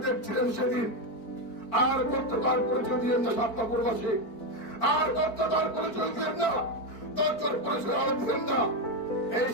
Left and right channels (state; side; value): late; right; 4.5 ms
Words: দেখছিলেন সেদিন। আর বক্ততার পরিচয় দিলেন না সাতপাপুরবাসী, আর বক্ততার পরিচয় দিলেন না, তথ্যের পরিচয় আরো দিলেন না। এই